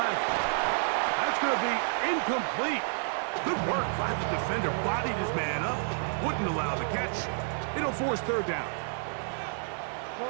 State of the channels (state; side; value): silent; left; 58 dB below the other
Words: That's going to be incomplete. Good work by the defender. Bodied his man up. Wouldn't allow the catch. It'll force 3rd down.